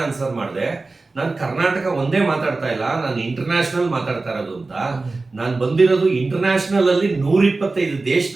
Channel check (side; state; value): left; quieter; 3.5 dB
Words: ಆನ್ಸರ್ ಮಾಡಿದೆ, ನಾನು ಕರ್ನಾಟಕ ಒಂದೇ ಮಾತಾಡ್ತಾ ಇಲ್ಲ, ನಾನು ಇಂಟರ್ನ್ಯಾಷನಲ್ ಮಾತಾಡ್ತಾ ಇರೋದು ಅಂತ. ನಾನು ಬಂದಿರೋದು ಇಂಟರ್ನ್ಯಾಷನಲ್ ಅಲ್ಲಿ 125